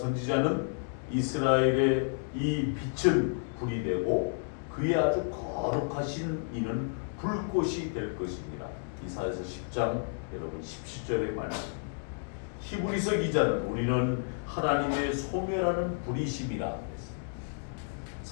이스라엘의 이 빛은 불이 되고 그의 아주 거룩하신 이는 불꽃이 될 것입니다. 이사야서 10장 여러분 17절의 말씀. 히브리서 기자는 우리는 하나님의 소멸하는 불이심이라 했습니다.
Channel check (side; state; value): right; silent; digital silence